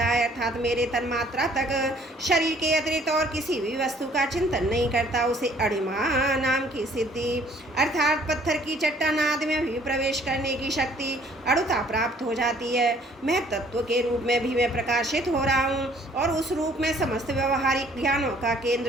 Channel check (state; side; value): normal; both; correlation 0.58